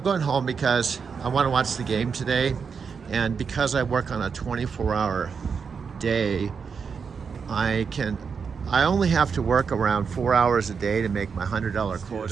going home because I want to watch the game today, and because I work on a 24-hour day, I only have to work around 4 hours a day to make my $100 quota.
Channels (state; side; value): quieter; left; 5.9 dB